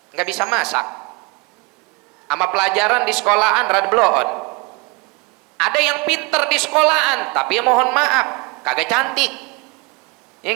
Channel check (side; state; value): left; quieter; 27.5 dB